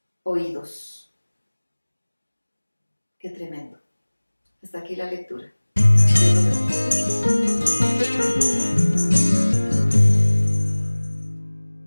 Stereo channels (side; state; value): both; inverted; correlation -1.00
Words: oídos. Qué tremendo. Hasta aquí la lectura.